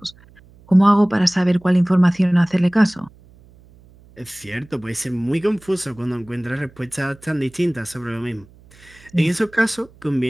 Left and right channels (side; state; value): right; noise; hum, 26 dB below the sound